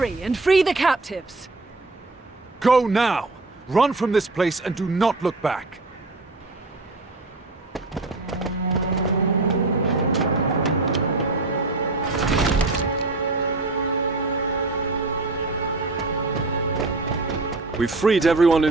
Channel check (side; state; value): left; quieter; 3.2 dB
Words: and free the captives! Go now! Run from this place and do not look back! We've freed everyone